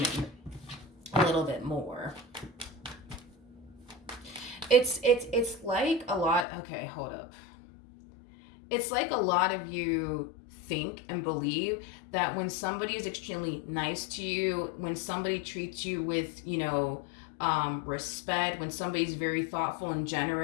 a little bit more. It's like a lot. Okay, hold up. It's like a lot of you think and believe that when somebody is extremely nice to you, when somebody treats you with, respect, when somebody's very thoughtful and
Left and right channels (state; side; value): drops out; right; at 6.5 s